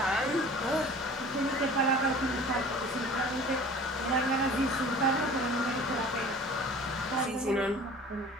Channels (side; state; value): both; normal; correlation 0.44